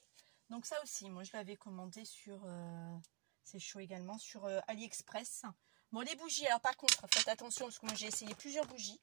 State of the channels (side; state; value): left; quieter; 34.1 dB